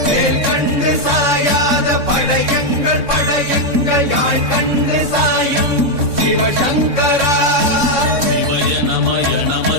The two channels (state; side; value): late; left; 3.6 ms